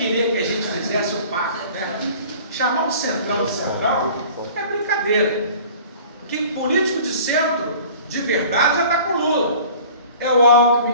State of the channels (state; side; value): inverted; both; correlation -0.46